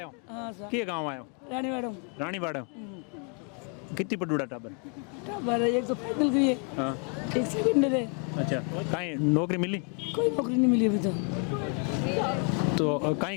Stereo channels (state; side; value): quieter; right; 38.5 dB